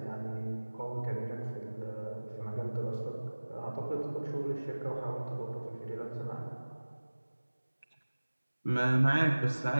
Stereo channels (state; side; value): inverted; both; correlation -1.00